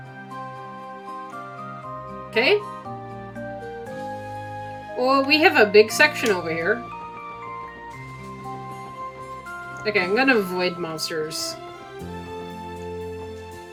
Okay. Well, we have a big section over here. Okay, I'm gonna avoid monsters.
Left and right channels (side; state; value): both; identical; correlation 1.00